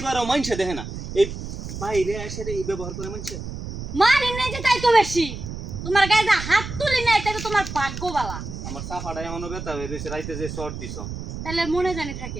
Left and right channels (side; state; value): right; noise; rumble, 8 dB below the sound